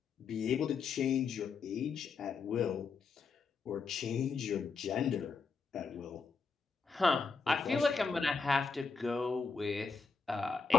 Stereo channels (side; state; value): right; quieter; 4.9 dB